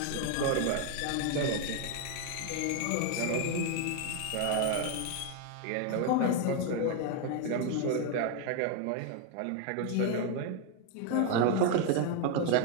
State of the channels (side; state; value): both; different; correlation 0.01